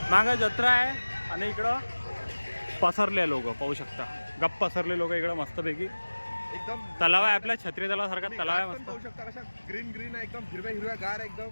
मागं जत्रा आहे आणि इकडं पसरले लोक पाहू शकता. गप्प पसरले लोक इकडं मस्तपैकी. एकदम तलाव आहे आपल्या छत्री तलावासारखा तलाव आहे पण मस्त. पाहू शकता कशा ग्रीन ग्रीन आहे, एकदम हिरव्या हिरव्या गार, एकदम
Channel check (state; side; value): inverted; both; correlation -1.00